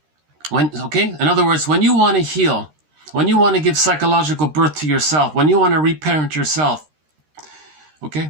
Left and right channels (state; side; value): late; left; 13 ms